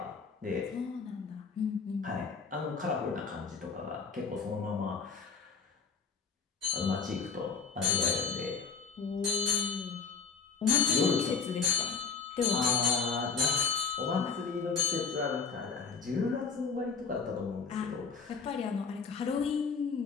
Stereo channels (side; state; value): right; quieter; 5.4 dB